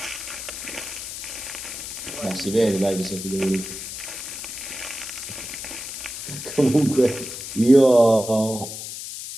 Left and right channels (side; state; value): left; noise; hiss, 8 dB below the sound